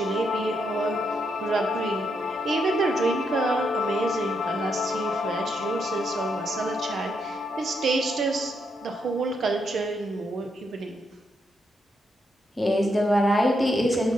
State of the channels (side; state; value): both; normal; correlation 0.79